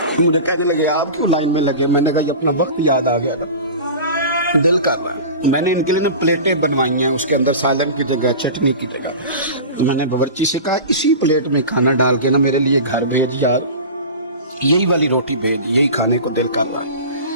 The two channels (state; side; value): inverted; both; correlation -0.33